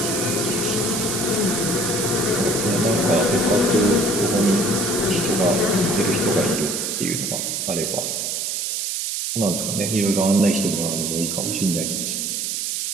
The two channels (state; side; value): noise; right; hiss, 1 dB below the sound